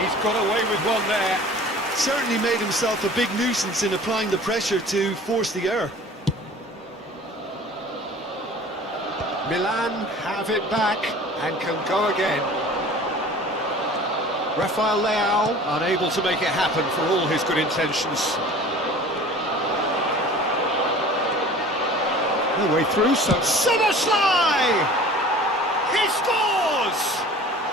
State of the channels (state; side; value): normal; both; correlation 0.44